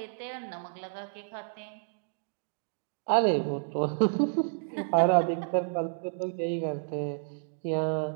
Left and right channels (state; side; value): silent; left; digital silence